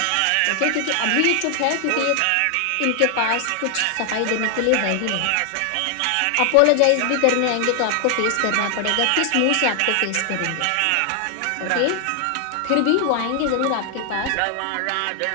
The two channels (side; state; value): both; different; correlation 0.00